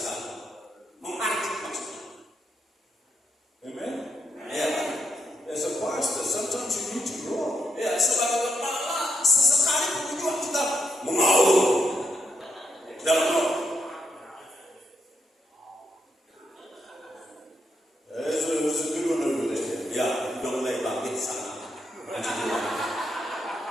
mengartik maksudnya? Amen? Ya kan? As a pastor, sometimes you need to roar. Ya, sebagai kepala sesekali pun juga kita mengaum dalam roh. There's a good one over there. Ya, udah mulai bangkit sana. Lanjut dulu.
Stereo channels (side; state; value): both; normal; correlation 0.79